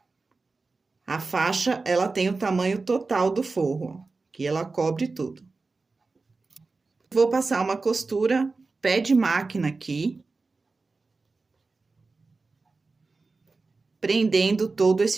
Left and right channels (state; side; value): quieter; left; 3.9 dB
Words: A faixa, ela tem o tamanho total do forro, ó, que ela cobre tudo. Vou passar uma costura pé de máquina aqui, prendendo todo